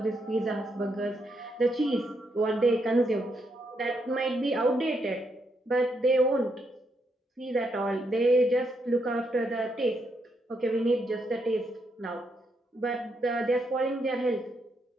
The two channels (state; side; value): normal; both; correlation 0.78